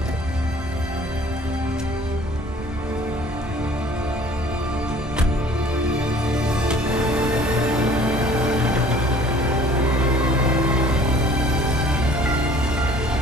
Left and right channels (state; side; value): normal; both; correlation 0.51